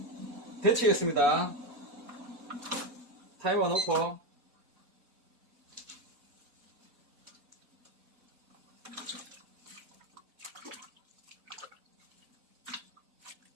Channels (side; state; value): both; normal; correlation 0.12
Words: 데치겠습니다. 타이머 놓고